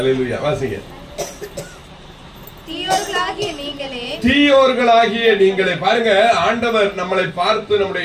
வாசிங்க. தீயோர்களாகிய நீங்களே. பாருங்க, ஆண்டவர் நம்மளை பார்த்து, நம்முடைய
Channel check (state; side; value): identical; both; correlation 1.00